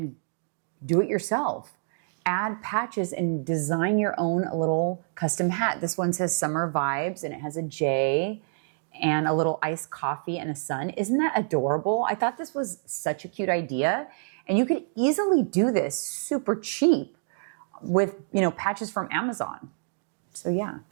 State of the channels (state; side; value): silent; left; digital silence